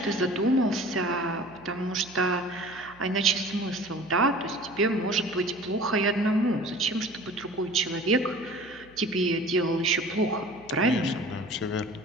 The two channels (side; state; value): right; noise; hum, 25 dB below the sound